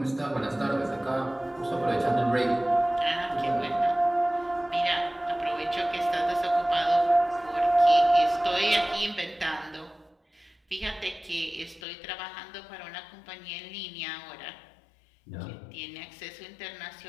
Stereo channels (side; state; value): right; drops out; at 11.8 s